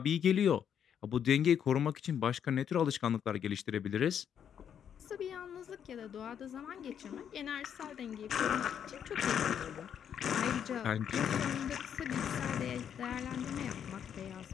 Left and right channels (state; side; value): quieter; right; 8.6 dB